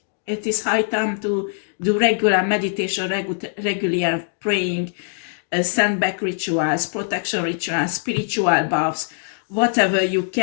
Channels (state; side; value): silent; right; digital silence